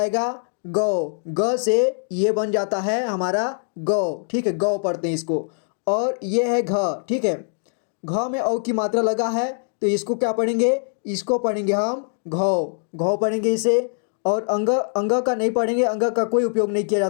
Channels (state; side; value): silent; right; digital silence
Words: गौ, ग से ये बन जाता है हमारा गौ, ठीक है, गौ पढ़ते हैं इसको। और ये है घ, ठीक है, घ में औ की मात्रा लगा है, तो इसको क्या पढ़ेंगे, इसको पढ़ेंगे हम घौ, घौ पढ़ेंगे इसे। और अंग, अंग का नहीं पढ़ेंगे, अंग का कोई उपयोग नहीं किया